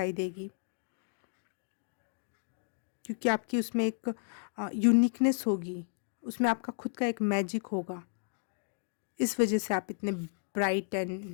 देगी, क्योंकि आपकी उसमें एक यूनिकनेस होगी, उसमें आपका खुद का एक मैजिक होगा। इस वजह से आप इतने bright and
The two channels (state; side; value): silent; right; digital silence